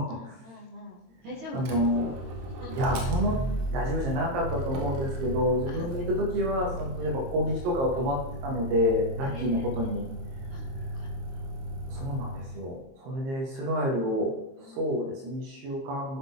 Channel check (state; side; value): late; left; 22 ms